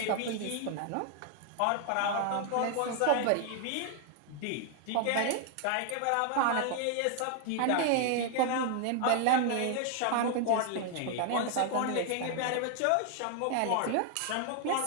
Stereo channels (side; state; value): both; different; correlation 0.00